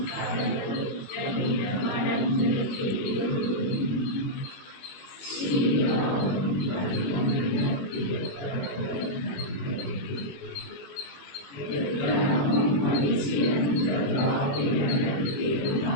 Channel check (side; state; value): right; late; 21 ms